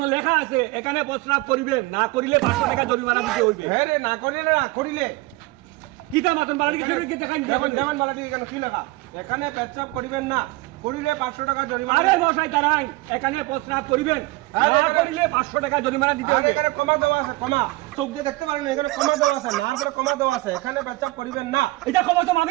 লেখা আছে এখানে প্রস্রাব করিবেন না করিলে 500 টাকা জরিমানা দিতে হইবে। হ্যাঁ রে না করিলে কিতা মাতন বাড়ি কিছু কি দেখাই দেখুন যেমন বালাটি এখানে কি লেখা? এখানে পেচ্ছাপ করিবেন না, করিলে 500 টাকা জরিমানা। আরে মশাই দাঁড়াই এখানে প্রস্রাব করিবেন আরে না এখানে- করিলে 500 টাকা জরিমানা দিতে আর হইবে। এখানে কমা দেওয়া আছে, কমা চোখ দিয়ে দেখতে পারেন না, এখানে কমা দেওয়া আছে, না করে কমা দেওয়া আছে, এখানে পেচ্ছাপ করিবেন না। এটা ক্ষমা তো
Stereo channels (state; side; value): quieter; left; 21.5 dB